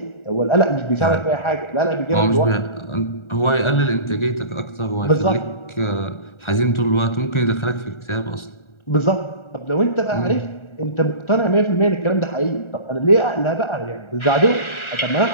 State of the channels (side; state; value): right; late; 1.4 ms